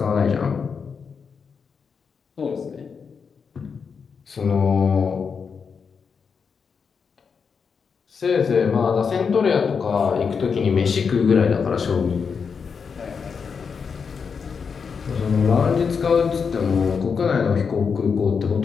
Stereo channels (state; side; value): quieter; right; 5.9 dB